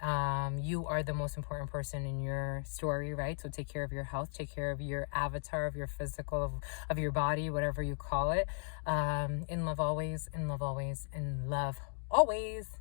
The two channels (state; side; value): silent; right; 54 dB below the other